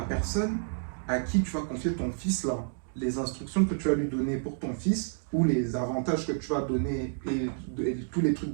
personne à qui tu vas confier ton fils là, les instructions que tu vas lui donner pour ton fils ou les avantages que tu vas donner et tous les trucs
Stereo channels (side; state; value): left; silent; digital silence